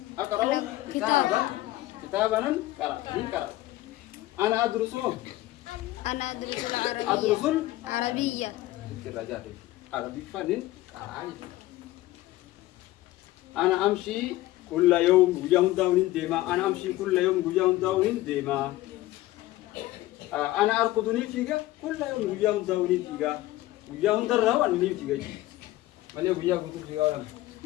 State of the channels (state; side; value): quieter; right; 16.8 dB